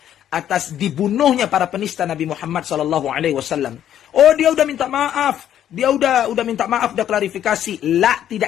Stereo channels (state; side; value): quieter; right; 10.7 dB